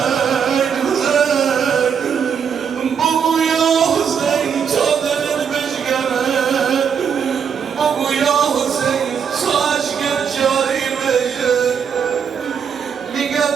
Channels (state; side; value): quieter; left; 7.1 dB